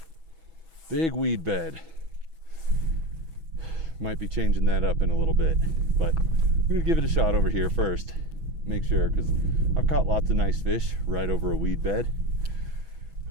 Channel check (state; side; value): late; left; 6.1 ms